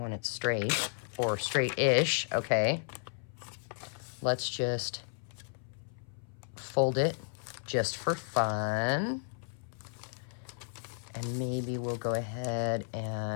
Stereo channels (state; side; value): silent; right; 55 dB below the other